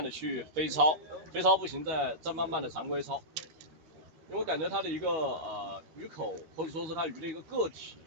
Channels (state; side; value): late; left; 13 ms